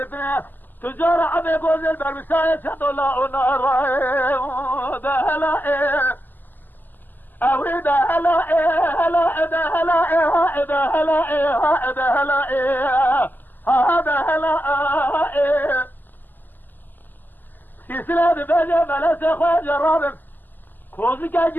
تجار عمي قوزي البرمساية شدو لا ونار ده هلا ايه اوي ده هلا ايه هلا ده هلا ايه ده هلا ايه ده هلا ايه هذا هلا ايه سلسلة بيجي ملسة خويا جرابك كوزي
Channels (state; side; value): late; right; 0.087 ms